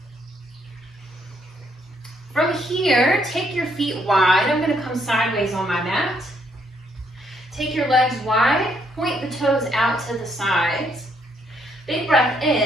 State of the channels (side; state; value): both; normal; correlation 0.72